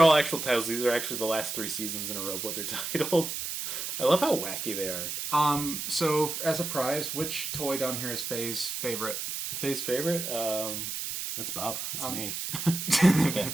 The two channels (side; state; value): right; noise; hiss, 4 dB below the sound